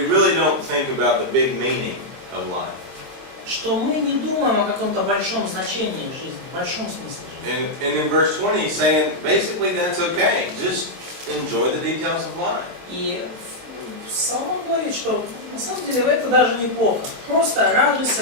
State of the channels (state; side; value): late; left; 23 ms